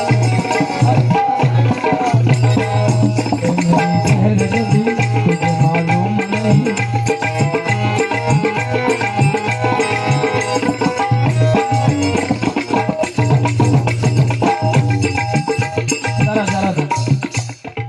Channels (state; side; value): identical; both; correlation 1.00